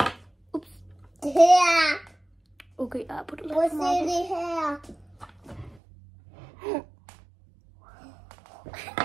Ups. Her. Okay, jeg har puttet lidt Prøv at for se meget det her.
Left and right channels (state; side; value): drops out; left; at 5.8 s